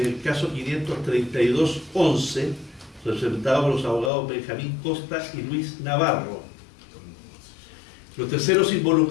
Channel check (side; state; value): right; drops out; at 4.1 s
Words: el caso 53211, representado por los abogados Benjamín Costa y Luis Navarro. Los terceros